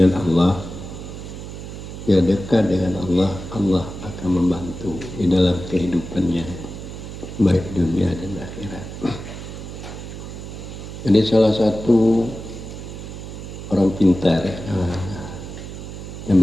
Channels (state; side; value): noise; right; hum, 10 dB below the sound